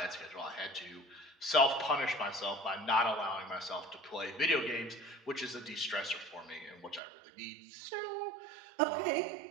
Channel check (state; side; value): drops out; left; at 7.0 s